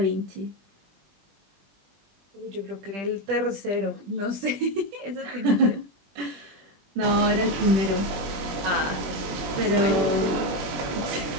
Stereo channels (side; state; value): left; late; 21 ms